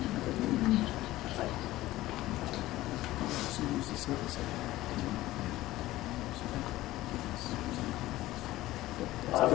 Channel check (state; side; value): quieter; right; 16.6 dB